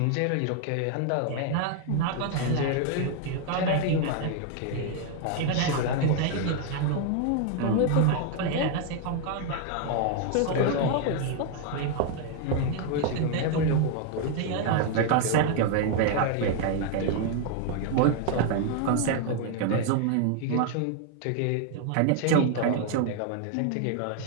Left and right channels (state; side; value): different; both; correlation 0.00